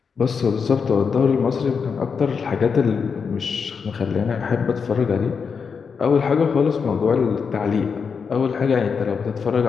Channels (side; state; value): right; quieter; 5.9 dB